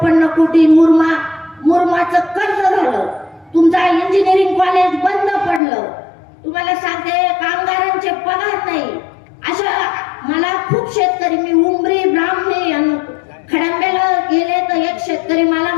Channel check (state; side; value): drops out; right; at 5.6 s